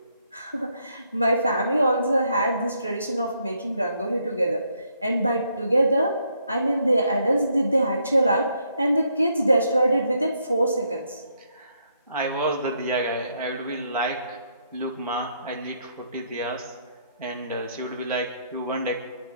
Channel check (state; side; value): inverted; both; correlation -0.74